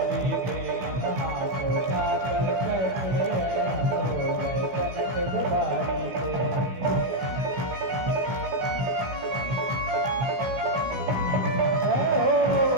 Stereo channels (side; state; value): left; late; 16 ms